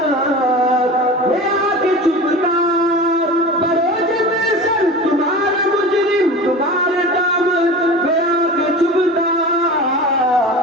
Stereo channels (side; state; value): both; normal; correlation 0.33